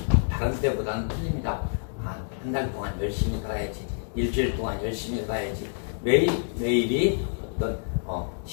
다른 때보다는 틀립니다. 한 달 동안 열심히 살아야지. 일주일 동안 열심히 살아야지. 매일이 어떤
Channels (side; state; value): right; silent; digital silence